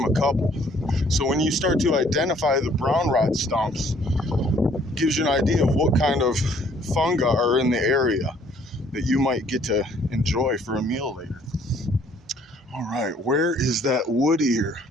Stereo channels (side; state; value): both; normal; correlation 0.61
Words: a couple. So when you start to identify the brown rot stumps, it gives you an idea of what kind of fungi are in the area that you might get to enjoy for a meal later. All right, where is that wood ear?